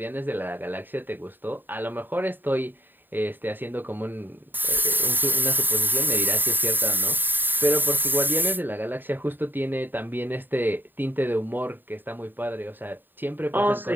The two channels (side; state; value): left; late; 0.093 ms